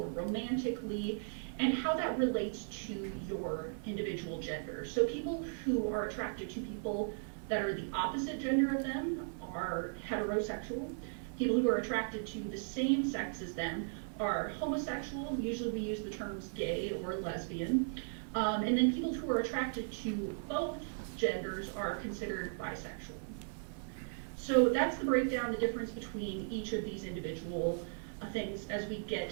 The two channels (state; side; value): silent; left; 53 dB below the other